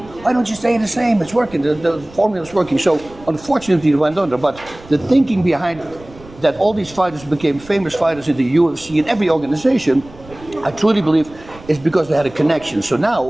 Why don't you stay the same? It's working. The formula's working. So unfortunately it went under. But the thinking behind that all these fighters became famous fighters in the UFC and every organization, I truly believe is because they had a connection. So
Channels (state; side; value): noise; right; rumble, 21 dB below the sound